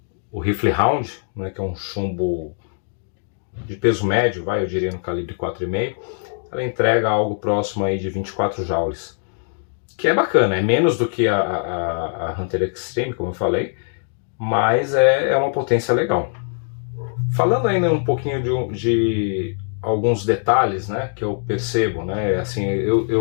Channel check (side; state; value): right; silent; 61 dB below the other